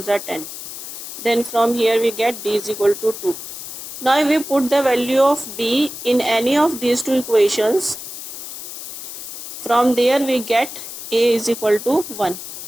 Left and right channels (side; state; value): left; noise; hiss, 10 dB below the sound